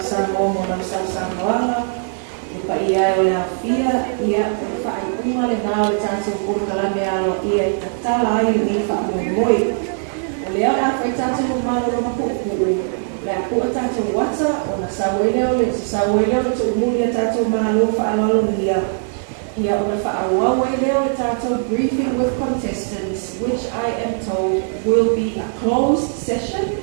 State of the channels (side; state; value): left; silent; 66 dB below the other